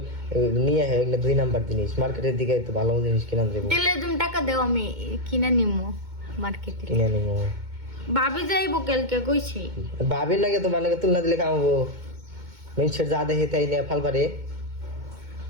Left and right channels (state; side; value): late; left; 2.2 ms